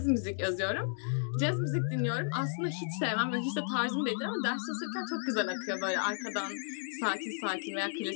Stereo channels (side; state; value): right; silent; digital silence